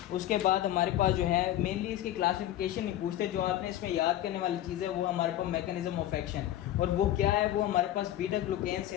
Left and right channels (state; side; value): quieter; right; 13.1 dB